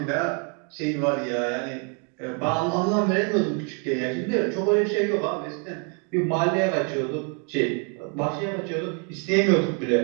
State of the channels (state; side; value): quieter; left; 38.2 dB